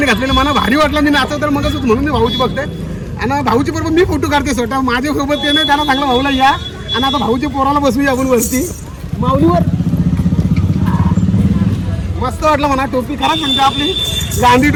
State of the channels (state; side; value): identical; both; correlation 1.00